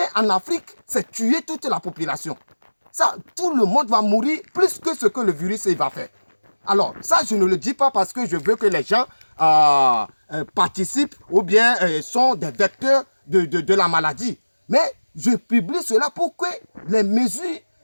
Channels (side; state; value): both; inverted; correlation -1.00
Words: en Afrique, c'est tuer toute la population. Ça, tout le monde va mourir plus que ce que le virus va faire. Alors, ça, je ne le dis pas parce que je veux que les gens participent ou bien sont des vecteurs de la maladie. Mais je publie cela pour que les mesures